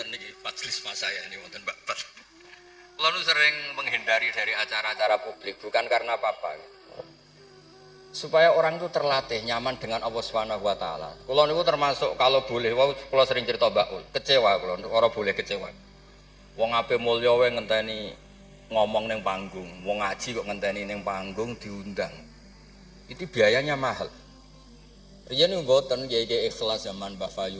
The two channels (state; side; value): identical; both; correlation 1.00